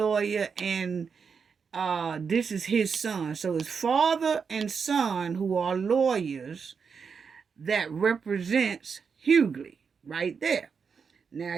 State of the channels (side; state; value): left; quieter; 5.9 dB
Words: and this is his son. So it's father and son who are lawyers that represents Hughley right there. Now